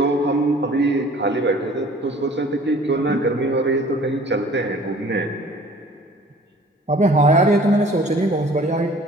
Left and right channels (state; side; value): normal; both; correlation 0.50